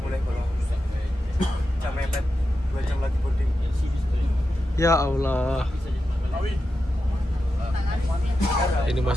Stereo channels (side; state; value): both; normal; correlation 0.89